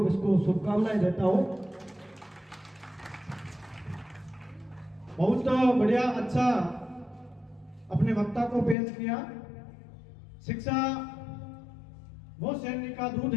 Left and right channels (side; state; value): right; drops out; at 8.8 s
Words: इसको शुभकामनाएं देता हूँ। बहुत बढ़िया, अच्छा अपने वक्ता को पेश किया। शिक्षा वो सैनिक का दूध